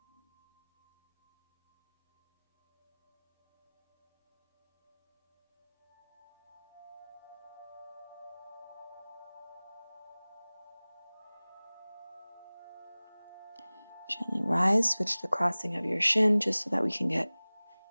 Gently rise, switch the crossing of your shin just so that we can get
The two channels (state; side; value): inverted; both; correlation -1.00